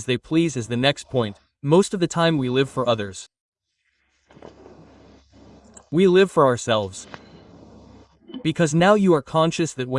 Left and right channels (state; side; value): identical; both; correlation 1.00